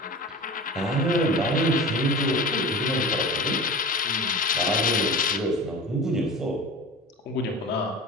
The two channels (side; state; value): both; normal; correlation 0.33